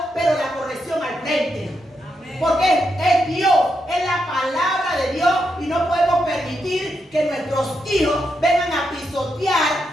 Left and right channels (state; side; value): normal; both; correlation 0.83